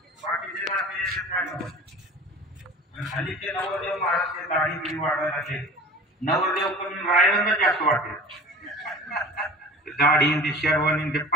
हल्लीचे नवरदेव महाराज दाढी बिडी वाढवायला लागले. नवरदेव पण रायवंच जास्त वाटते. दाढी शेरवानी ते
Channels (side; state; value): both; normal; correlation 0.40